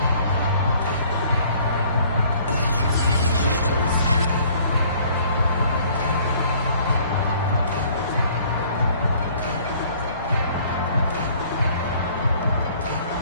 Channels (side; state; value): both; inverted; correlation -0.56